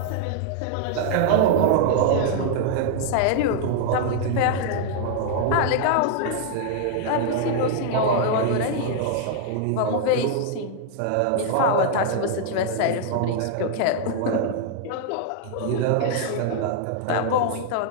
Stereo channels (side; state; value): both; different; correlation -0.01